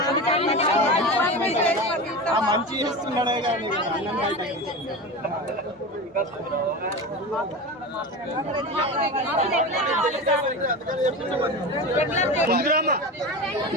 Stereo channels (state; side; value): normal; both; correlation 0.26